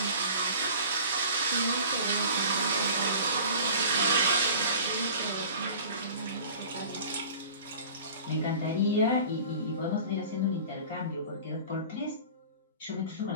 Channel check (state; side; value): inverted; both; correlation -0.42